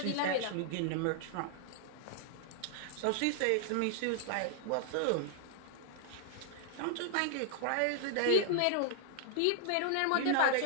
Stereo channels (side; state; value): both; different; correlation 0.00